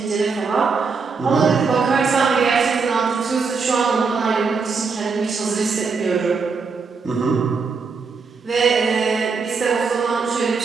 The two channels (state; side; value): quieter; left; 5.0 dB